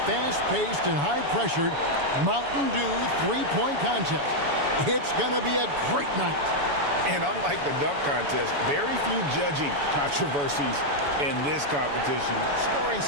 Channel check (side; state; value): left; late; 7.0 ms